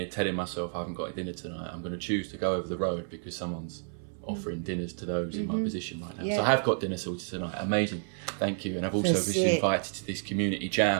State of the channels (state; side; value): silent; left; 57 dB below the other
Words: telling myself I haven't got dinner tonight, I'm going to choose to go over the road because someone's offering dinners to those in my position right now. So I have got dinner sorted tonight. Amazing. Thank you. And I've also been invited to this community